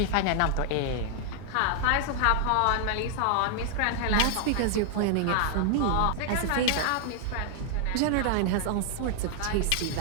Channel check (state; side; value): different; both; correlation -0.01